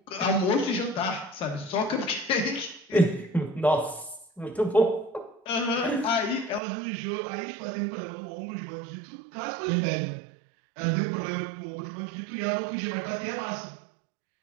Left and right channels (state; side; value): drops out; left; at 6.6 s